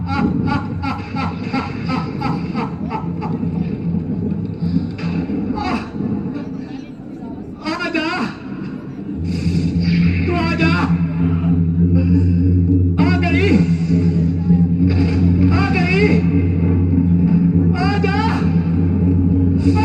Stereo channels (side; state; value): both; identical; correlation 1.00